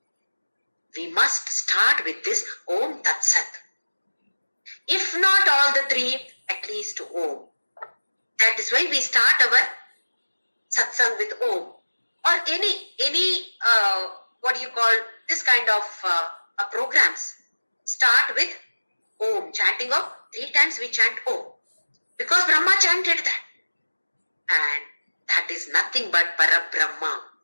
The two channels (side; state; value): both; inverted; correlation -1.00